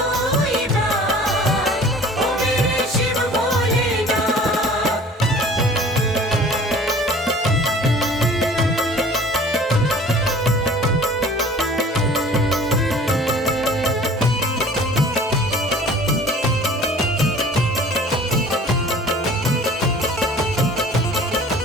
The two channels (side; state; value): both; normal; correlation 0.47